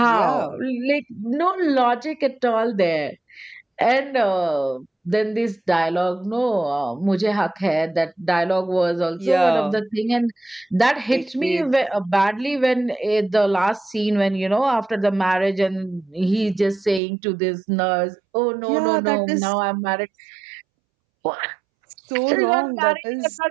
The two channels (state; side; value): drops out; left; at 17.0 s